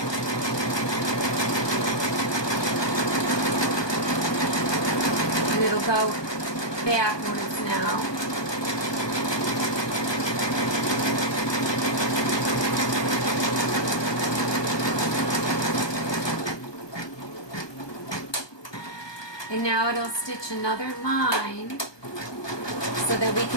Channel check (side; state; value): right; late; 1.2 ms